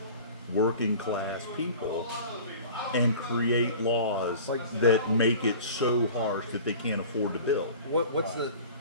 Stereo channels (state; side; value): inverted; both; correlation -0.41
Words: working class people and create laws that make it so harsh that they can't afford to build.